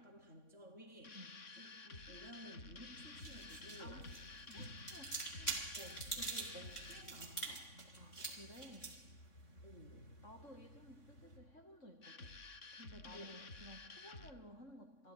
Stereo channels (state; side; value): late; right; 3.6 ms